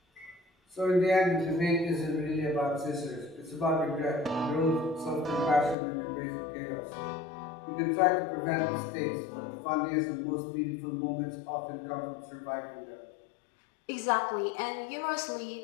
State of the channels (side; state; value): right; drops out; at 5.8 s